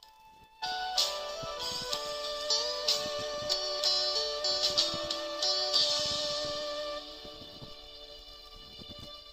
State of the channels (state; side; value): identical; both; correlation 1.00